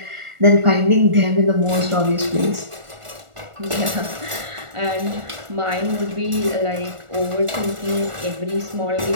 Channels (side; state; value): left; late; 1.4 ms